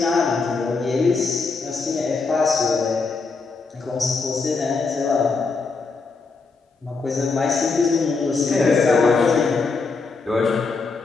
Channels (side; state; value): right; quieter; 4.3 dB